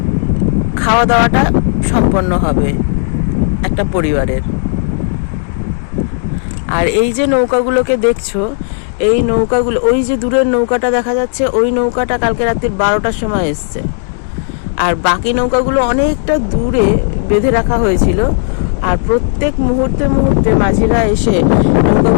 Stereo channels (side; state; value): right; silent; digital silence